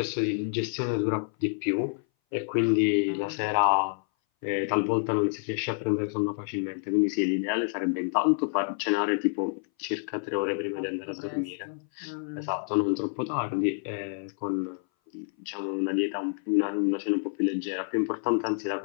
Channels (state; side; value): silent; right; 58 dB below the other